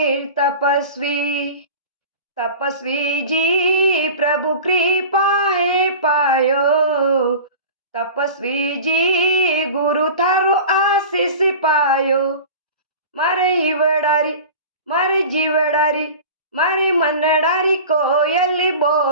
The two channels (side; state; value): both; inverted; correlation -0.36